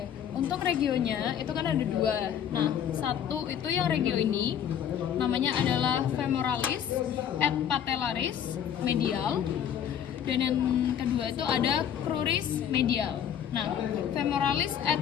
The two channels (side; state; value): right; quieter; 9.1 dB